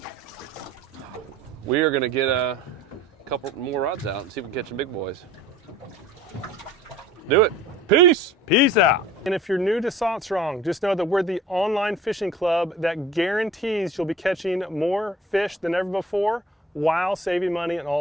We are going to get a couple more rods out and see if we can catch some big boys. Do it. Peace. Peace out. And if you're new to Salt Strong, just know that we're the online fishing club that guarantees you'll be catching more fish than ever before while saving money on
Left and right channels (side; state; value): both; normal; correlation 0.47